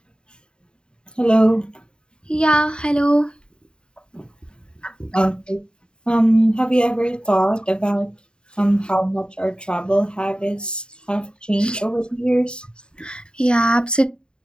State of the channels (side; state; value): right; late; 0.050 ms